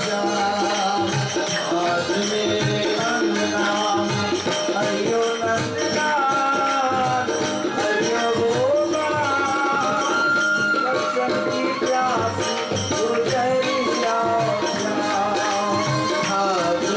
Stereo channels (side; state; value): both; identical; correlation 1.00